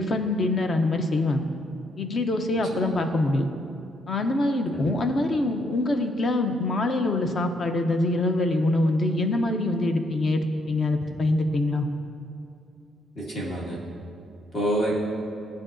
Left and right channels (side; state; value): both; normal; correlation 0.72